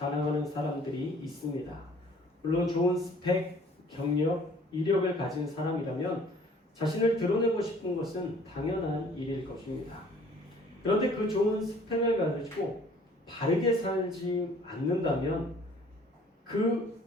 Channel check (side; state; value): both; normal; correlation 0.54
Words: 사람들이 있습니다. 물론 좋은 스펙, 경력, 이력을 가진 사람이라면 자신을 드러내고 싶은 것은 당연한 일일 것입니다. 그런데 그 좋은 스펙을 가지고 바르게 살지 않는다면 그